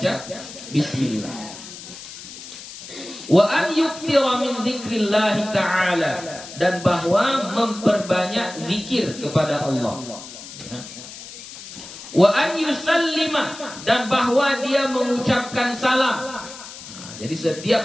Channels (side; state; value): left; noise; hiss, 14 dB below the sound